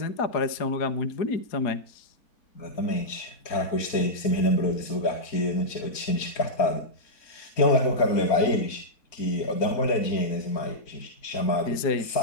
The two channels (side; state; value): right; late; 4.4 ms